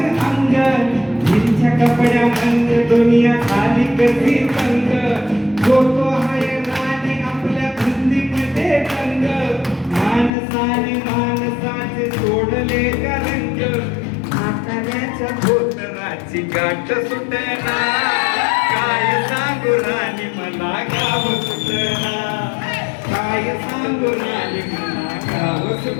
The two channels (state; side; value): drops out; right; at 10.3 s